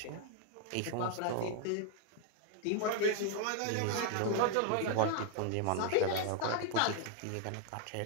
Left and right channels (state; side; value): different; both; correlation 0.00